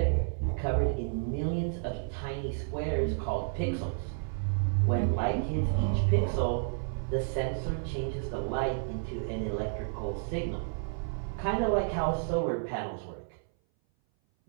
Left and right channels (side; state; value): left; silent; 57 dB below the other